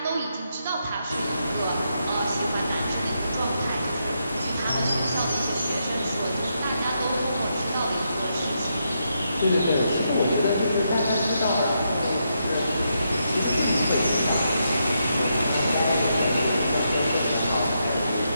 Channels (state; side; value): inverted; both; correlation -0.82